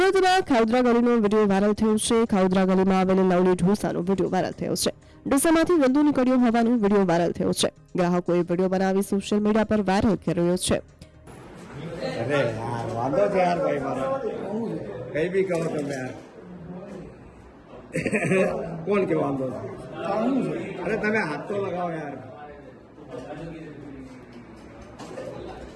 ખાઉદરા ગલીનો વિડીયો વાયરલ થયો છે। ખાઉદરા ગલીમાં આવેલ લવલી ઢોસાનો વિડીયો વાયરલ થયો છે। ઢોસામાંથી વંદો નીકળ્યો હોવાનો વિડીયો વાયરલ થયો છે। ગ્રાહકોએ વિડીયો બનાવી સોશિયલ મીડિયા પર વાયરલ કરી રહ્યો છે। अरे यार वांदो छे यार भाई मारे कई भी कहो तुम यार कौन के वांदो छे? अरे तमे हाथ तो लगाओ यार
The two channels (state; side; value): identical; both; correlation 1.00